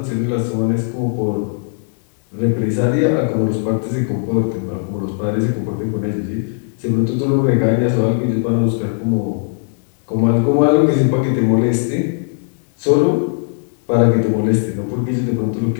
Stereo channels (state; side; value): silent; right; digital silence